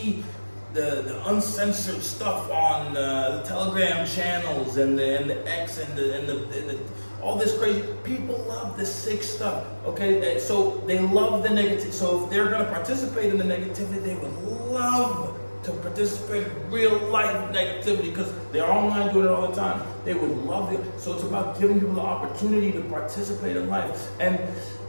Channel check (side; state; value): both; inverted; correlation -1.00